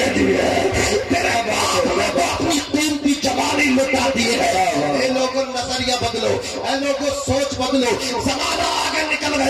دی ہے، تیرے باپ نے تو اپنی دین کی جوانی لٹا دی ہے۔ اے لوگوں نظریہ بدلو، اے لوگوں سوچ بدلو، زمانہ آگے نکل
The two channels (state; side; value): identical; both; correlation 1.00